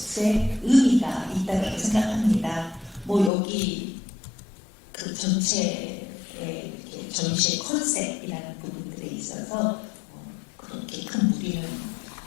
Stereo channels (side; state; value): right; drops out; at 3.3 s